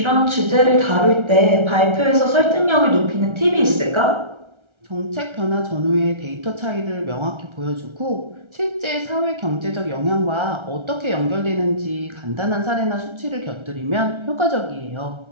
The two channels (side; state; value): left; late; 1.3 ms